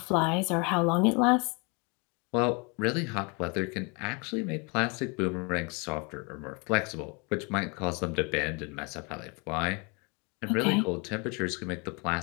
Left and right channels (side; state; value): right; quieter; 31.3 dB